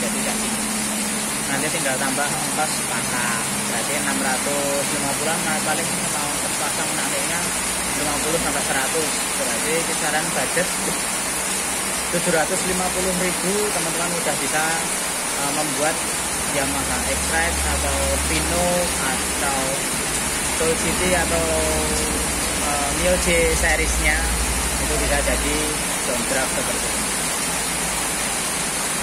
gaji. Nanti tinggal tambah ongkos pasang, berarti 650-an. Nah, paling mau ongkos pasang nantinya 50 sampai 100, berarti kisaran budget 750.000. Teman-teman udah bisa membuat Yamaha X-Rite atau Pino atau Soul City atau MIOG seriesnya, itu bisa jadi downdraft seperti ini.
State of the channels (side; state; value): both; identical; correlation 1.00